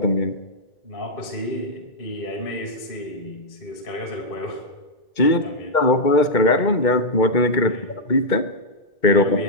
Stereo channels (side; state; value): right; late; 2.2 ms